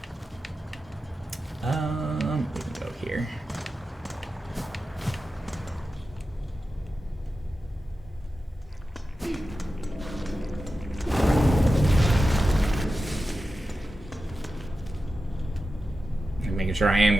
We can go here. I'm making sure I am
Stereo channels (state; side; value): normal; both; correlation 0.92